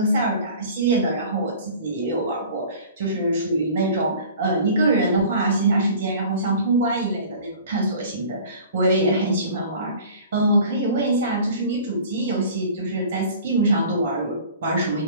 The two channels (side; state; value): both; inverted; correlation -0.44